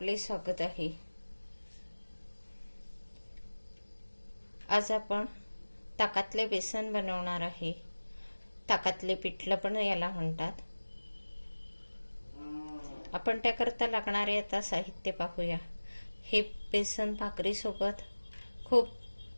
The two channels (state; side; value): inverted; both; correlation -1.00